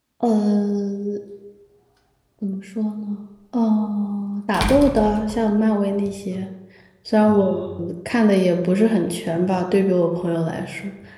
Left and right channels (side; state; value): both; identical; correlation 1.00